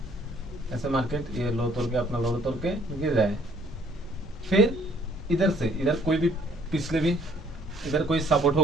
ऐसे मार्केट ये लो तोड़ के अपना लो तोड़ के गिर रहा है। फिर इधर कोई भी पिछले भी इधर कोई सपोर्ट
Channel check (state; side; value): normal; both; correlation 0.61